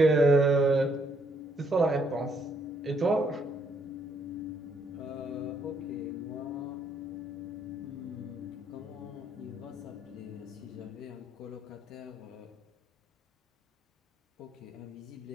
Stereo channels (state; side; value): normal; both; correlation 0.71